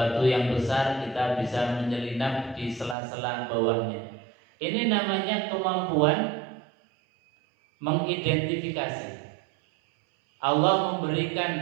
yang besar kita bisa menyelinap di sela-sela bawahnya. Ini namanya kemampuan mengidentifikasi. Allah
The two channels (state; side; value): drops out; left; at 3.0 s